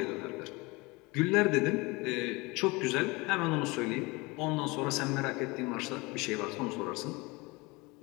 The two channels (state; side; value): quieter; right; 24.8 dB